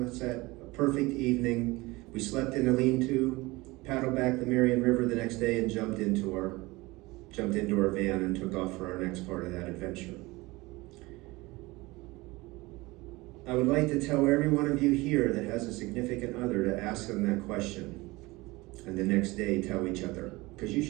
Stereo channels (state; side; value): quieter; left; 22.0 dB